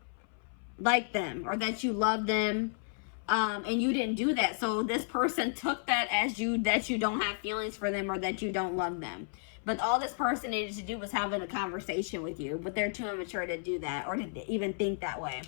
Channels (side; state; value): right; silent; 56 dB below the other